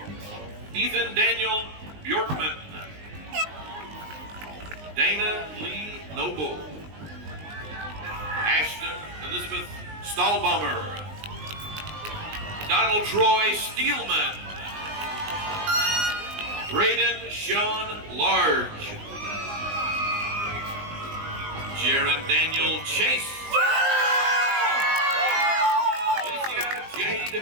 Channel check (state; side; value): late; left; 19 ms